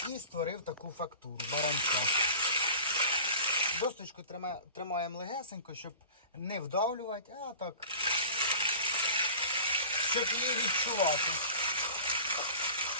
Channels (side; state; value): both; inverted; correlation -0.39